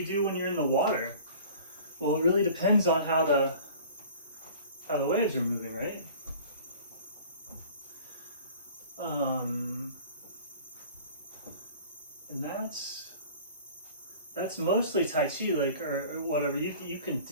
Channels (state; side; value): inverted; both; correlation -0.45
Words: do when you're in the water? Well, it really depends on how the waves are moving, right? And that's mostly Tai Chi, like, or whatever. You can,